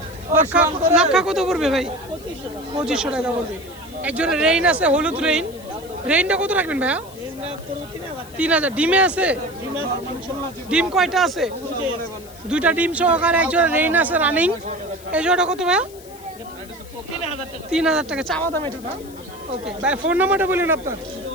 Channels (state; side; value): noise; left; hiss, 21 dB below the sound